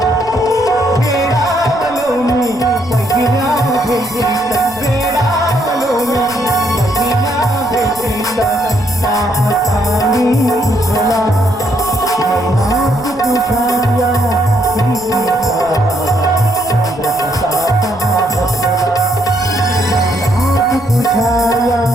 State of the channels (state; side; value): noise; right; rumble, 21 dB below the sound